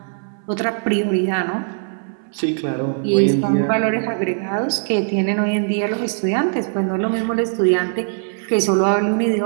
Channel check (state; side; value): silent; left; 66 dB below the other